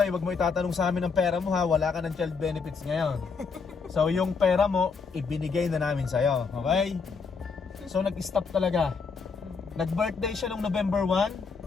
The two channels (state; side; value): quieter; right; 5.1 dB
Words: wag mo itatanong sa amin ng pera mo, ha. Wala ka ng child benefits ngayon. So yung pera mo, ibinigay na namin sa'yo. Okay? So nag-stop talaga. Nag-birthday siya nung November